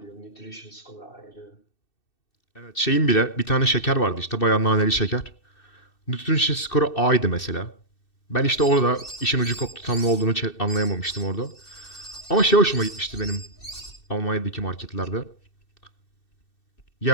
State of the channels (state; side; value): late; right; 2.6 ms